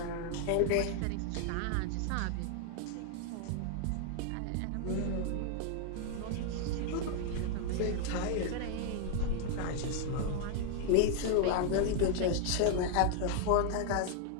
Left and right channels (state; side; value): different; both; correlation 0.00